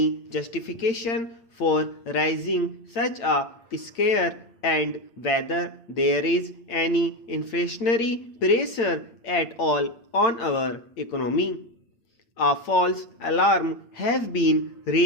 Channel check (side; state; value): right; late; 8.8 ms